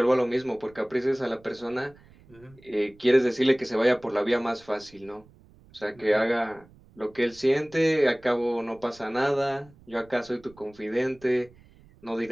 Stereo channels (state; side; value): noise; right; rumble, 26 dB below the sound